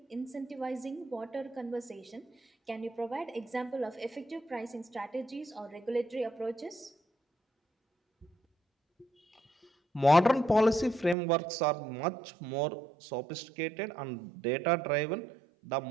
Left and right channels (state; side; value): drops out; left; at 11.2 s